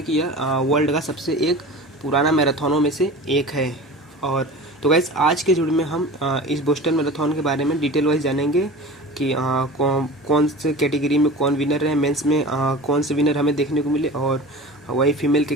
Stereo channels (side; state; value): both; normal; correlation 0.35